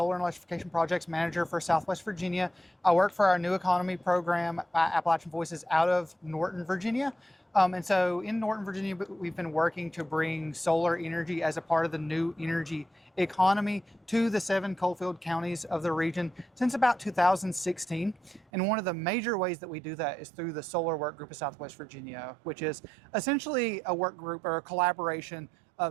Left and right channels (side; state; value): left; drops out; at 18.4 s